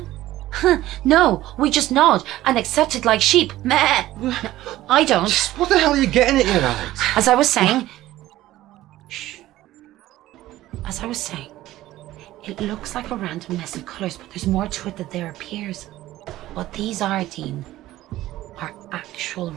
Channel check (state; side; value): quieter; left; 15.4 dB